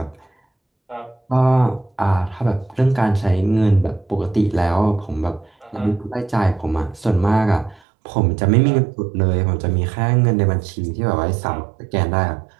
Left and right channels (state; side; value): drops out; left; at 7.8 s